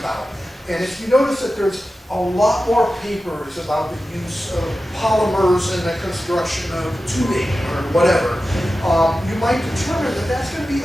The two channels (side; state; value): both; normal; correlation 0.93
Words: And if you notice that there's a lot more papers about the use of polymers in the construction of tubing or whatever, you might determine that that's going to be